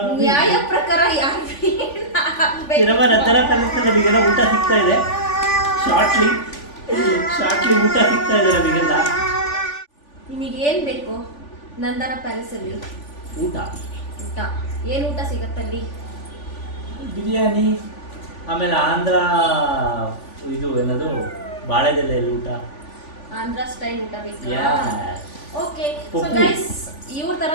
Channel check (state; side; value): late; right; 3.5 ms